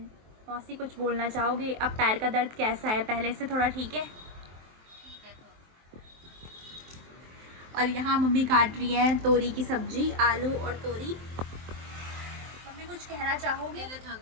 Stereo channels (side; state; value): left; late; 23 ms